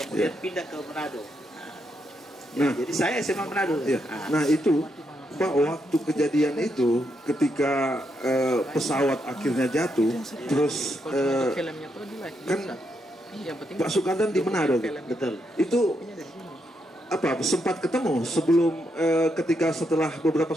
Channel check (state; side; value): normal; both; correlation 0.80